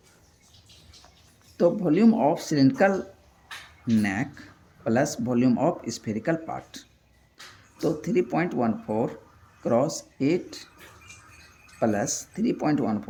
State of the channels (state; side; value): identical; both; correlation 1.00